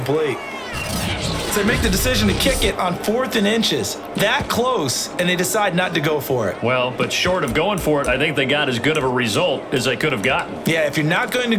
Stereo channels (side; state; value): both; identical; correlation 1.00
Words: So they make the decision to kick it on 4th and inches. That close, and they decide not to go for it. Well, but short of going for it, I think they got as good of a result as they could have gotten. Yeah, if you're not going to